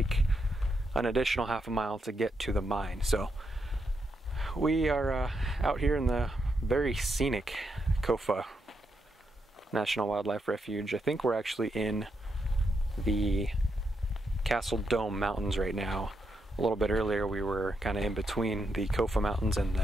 an additional half a mile to get to the mine. So we are out here in the very scenic Kofa National Wildlife Refuge. I think we're actually in the Seldom Mountains right now. A little bit earlier we were kind of in between the Kofa Mountains and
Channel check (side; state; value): both; normal; correlation 0.82